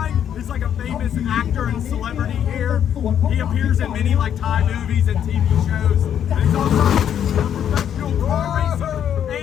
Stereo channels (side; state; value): right; quieter; 9.4 dB